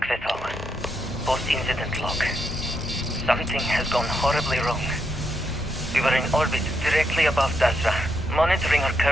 Vethal. Post-incident log. Something has gone horribly wrong. We were in orbit directly above Dasra, monitoring our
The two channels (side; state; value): both; normal; correlation 0.80